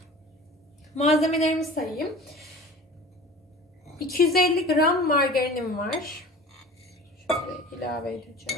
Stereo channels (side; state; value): both; normal; correlation 0.40